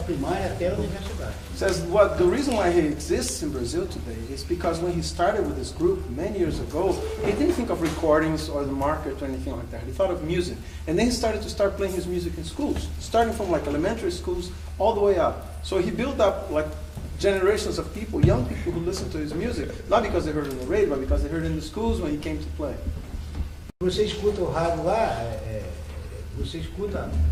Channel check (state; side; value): identical; both; correlation 1.00